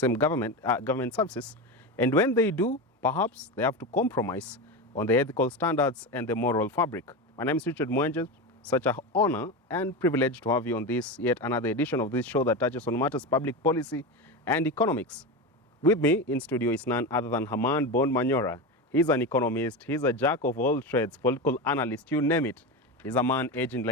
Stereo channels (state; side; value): normal; both; correlation 0.20